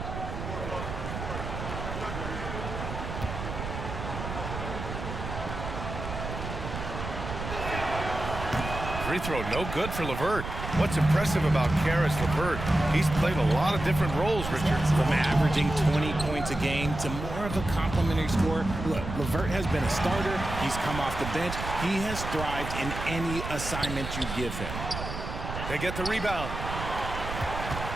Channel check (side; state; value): right; noise; rumble, 7 dB below the sound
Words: Free throw, no good for LeVert. What's impressive about Karis LeVert, he's played a lot of different roles, Richard. From averaging 20 points a game to more of a complimentary scorer. Look, LeVert has been a starter. He's come off the bench. He has thrived in any assignment you give him. They get the rebound.